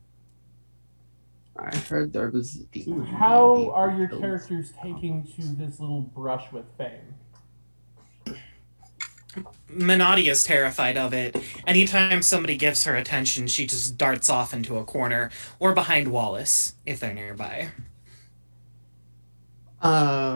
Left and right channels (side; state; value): both; inverted; correlation -1.00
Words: I heard there was a demon. How are your characters taking to this little brush with fame? Minotti is terrified of it. Anytime somebody gives her attention, she just darts off into a corner or behind Wallace if they're nearby.